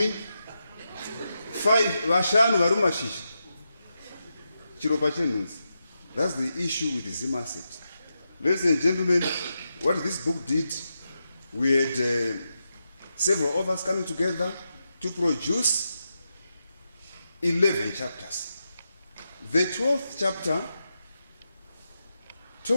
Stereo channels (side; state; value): both; inverted; correlation -0.87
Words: 5 Vashanu Varumashish, Chiropache Nunzi. That's the issue with the Zimasset. Ladies and gentlemen, what this book did, we had several authors coming together to produce 11 chapters. The 12th chapter